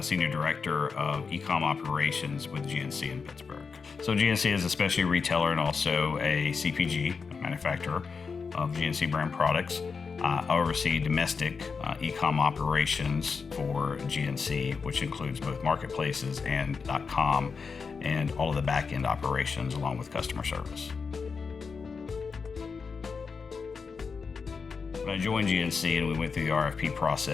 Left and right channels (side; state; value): right; quieter; 5.2 dB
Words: Senior Director of E-com Operations with GNC in Pittsburgh. So GNC is a specialty retailer and also a CPG, a manufacturer of GNC brand products. I oversee domestic e-com operations for GNC, which includes both marketplaces and .com, and all of the back-end operations along with customer service. When I joined GNC and we went through the RFP